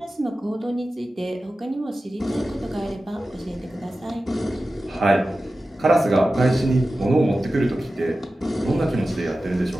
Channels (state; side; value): normal; both; correlation 0.94